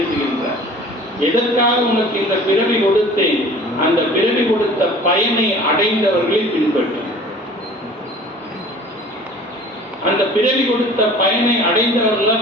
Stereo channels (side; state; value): both; normal; correlation 0.46